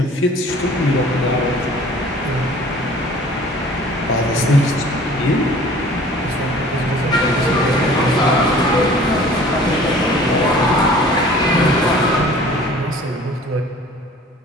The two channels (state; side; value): normal; both; correlation 0.49